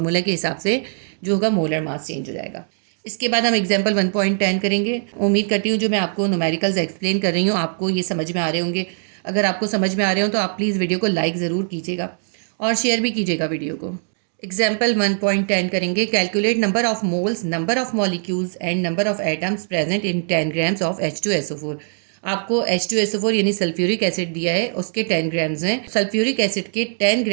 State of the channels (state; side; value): silent; left; 64 dB below the other